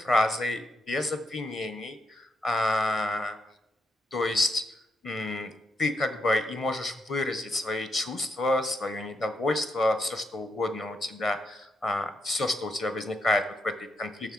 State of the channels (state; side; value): normal; both; correlation 0.81